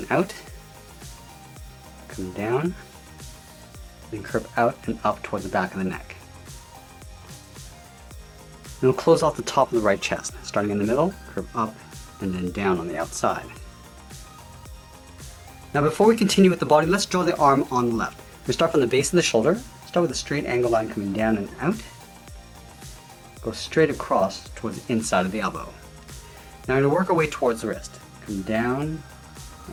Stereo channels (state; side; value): identical; both; correlation 1.00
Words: out. Come down. Then curve out and up towards the back of the neck. And we'll close off the top of the right chest, starting in the middle, curve up, and then down on the outside. Now before we continue with the body, let's draw the arm on the left. We start from the base of the shoulder, Start with a straight angle line coming down and out. Go straight across towards the inside of the elbow. Now I'm going to work our way towards the wrist. Come down